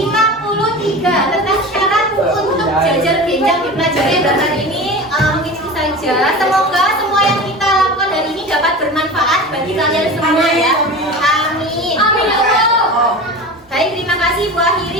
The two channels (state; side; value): normal; both; correlation 0.32